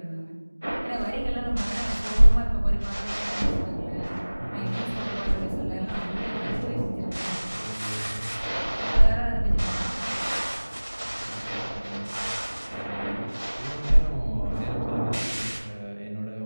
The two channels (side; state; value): both; inverted; correlation -1.00